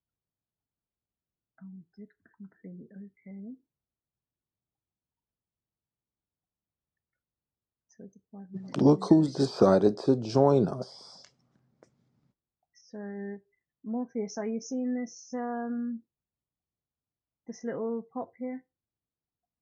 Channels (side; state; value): both; identical; correlation 1.00